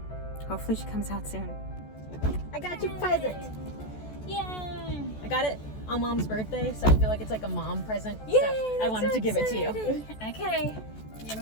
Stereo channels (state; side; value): late; right; 14 ms